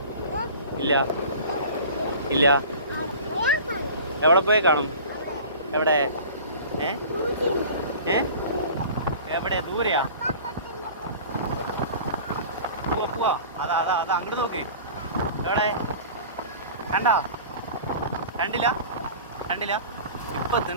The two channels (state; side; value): inverted; both; correlation -0.40